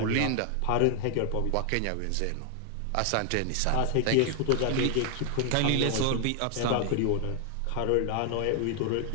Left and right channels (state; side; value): different; both; correlation 0.00